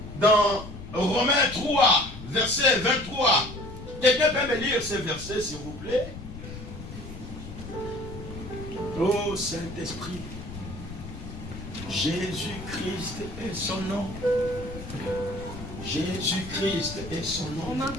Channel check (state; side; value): noise; left; rumble, 11 dB below the sound